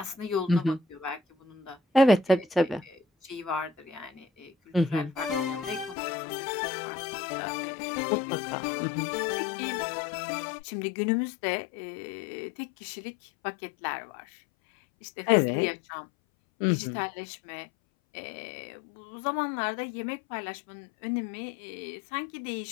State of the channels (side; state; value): right; drops out; at 6.0 s